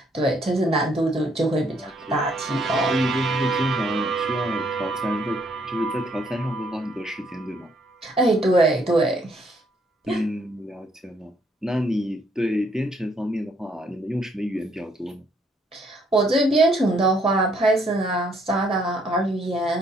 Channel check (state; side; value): normal; both; correlation 0.69